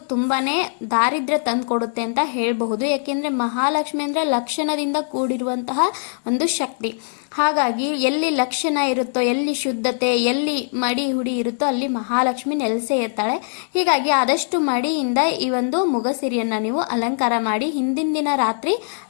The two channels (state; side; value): silent; right; digital silence